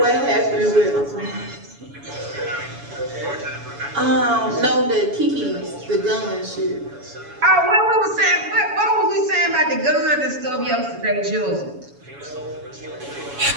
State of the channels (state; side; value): late; left; 7.1 ms